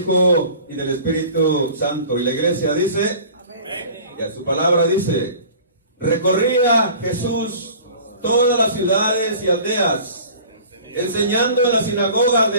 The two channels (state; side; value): inverted; both; correlation -0.44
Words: y del Espíritu Santo. Y la iglesia dice, y a su palabra dice, recorría Jesús todas las ciudades y aldeas, enseñando en las sinagogas